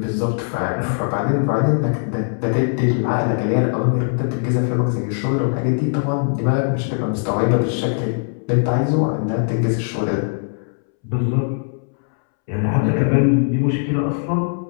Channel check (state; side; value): silent; right; 66 dB below the other